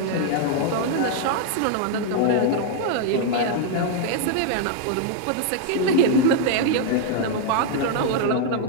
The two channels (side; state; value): both; different; correlation 0.00